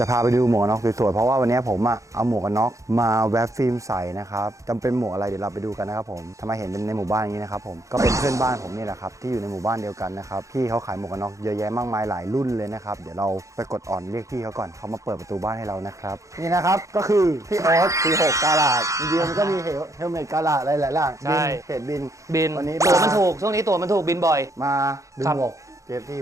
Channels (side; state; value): left; late; 0.15 ms